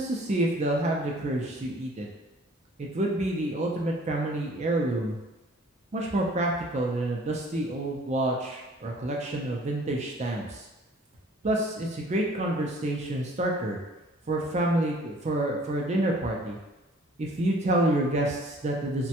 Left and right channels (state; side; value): normal; both; correlation 0.53